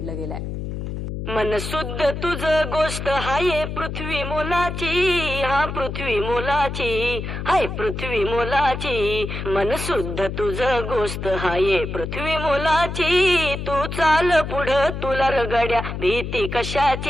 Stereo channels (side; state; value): left; noise; hum, 6 dB below the sound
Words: गेलं आहे. मन शुद्ध तुझ गोष्ट हाय पृथ्वी मोलाची, हा पृथ्वी मोलाची, हाय पृथ्वी मोलाची. मन शुद्ध तुझ गोष्ट हाय पृथ्वी मोलाची. तू चाल पुढं तुला रगड्या भीती